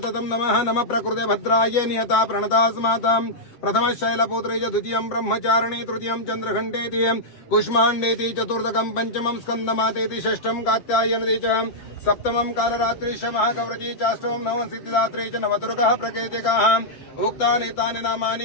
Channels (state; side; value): late; right; 7.5 ms